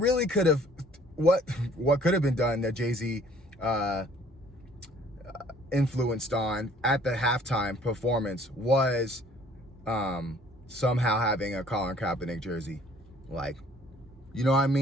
could have, what could have been done that Jay-Z influenced on at the halftime performance was somehow having a Colin Kaepernick jersey. Like, you know what I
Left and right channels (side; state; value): both; normal; correlation 0.56